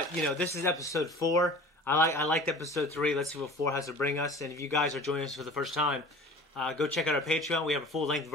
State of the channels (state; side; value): normal; both; correlation 0.42